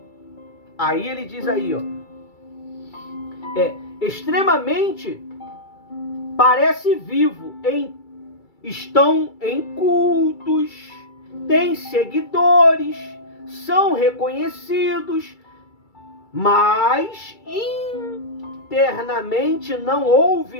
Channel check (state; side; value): late; right; 2.3 ms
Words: Aí ele diz aí, ó. Extremamente parece vivo, estão em cultos, têm seguidores, são reconhecidos, mas internamente não